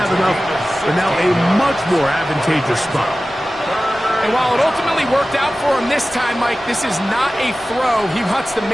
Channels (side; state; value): both; normal; correlation 0.96